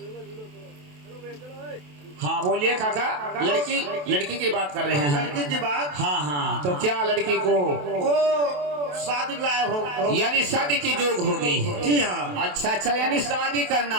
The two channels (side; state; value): left; late; 28 ms